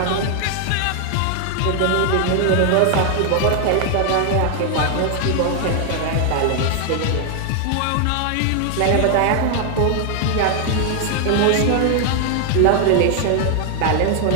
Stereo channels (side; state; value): both; different; correlation 0.00